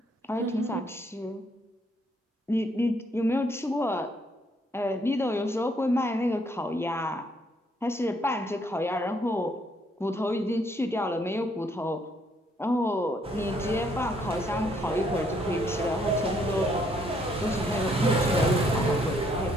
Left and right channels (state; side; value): normal; both; correlation 0.69